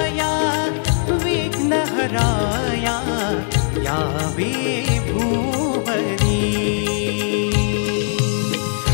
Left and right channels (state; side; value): silent; right; digital silence